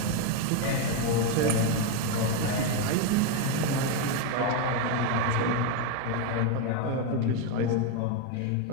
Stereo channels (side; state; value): both; different; correlation 0.02